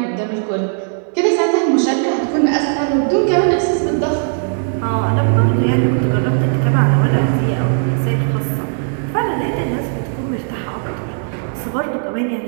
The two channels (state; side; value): silent; left; digital silence